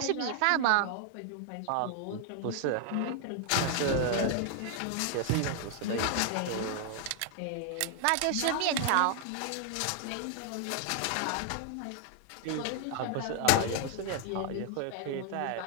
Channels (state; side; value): different; both; correlation 0.00